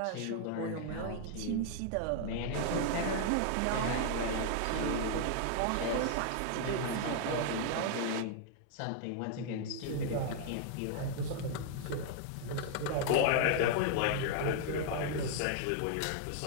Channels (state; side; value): different; both; correlation 0.00